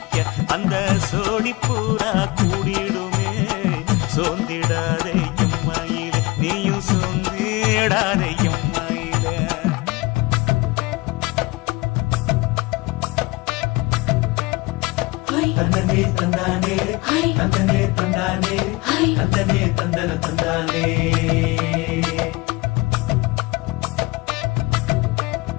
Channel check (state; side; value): quieter; right; 23.4 dB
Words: அந்த சோடி பூரா கூடிடுமே சோந்திடாதே எம்மையிலே நீயும் சோந்திடாதே எம்மையிலே தந்தனே தந்தானே தந்தனே தந்தானே தந்தனே தந்தன தந்தானே